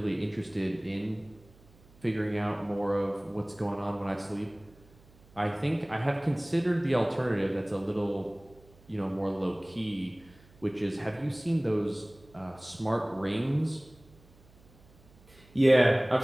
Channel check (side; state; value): right; noise; hum, 27 dB below the sound